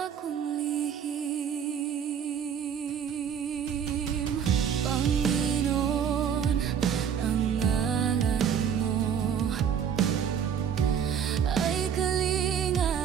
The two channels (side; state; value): left; quieter; 8.0 dB